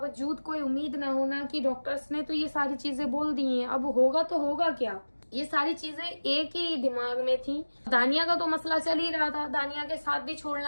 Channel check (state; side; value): inverted; both; correlation -1.00